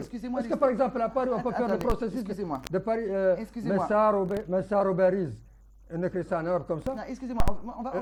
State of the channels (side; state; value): both; identical; correlation 1.00